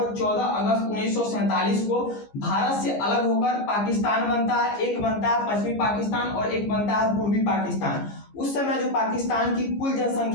14 अगस्त 1947 को भारत से अलग होकर पाकिस्तान बनता है। एक बनता है पश्चिमी पाकिस्तान और एक बनता है पूर्वी पाकिस्तान। उस समय जो पाकिस्तान की कुल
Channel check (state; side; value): late; right; 15 ms